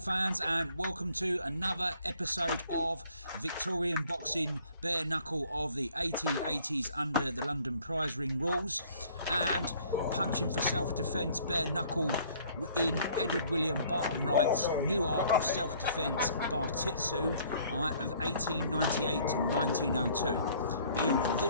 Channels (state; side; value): inverted; both; correlation -0.57